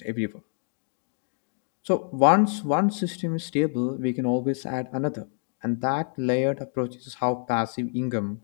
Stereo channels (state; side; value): silent; right; 60 dB below the other